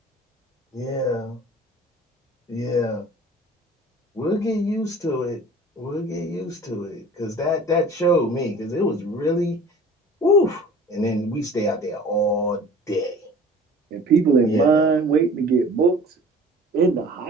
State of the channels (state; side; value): normal; both; correlation 0.45